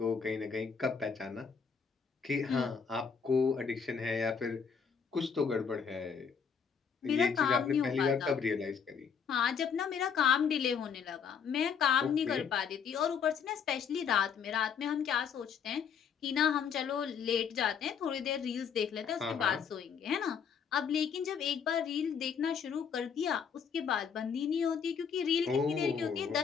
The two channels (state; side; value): quieter; right; 6.7 dB